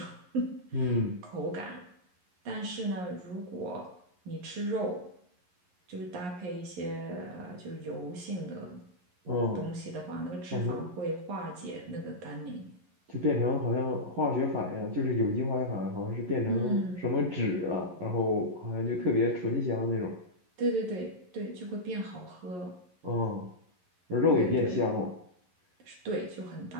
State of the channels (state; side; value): late; left; 11 ms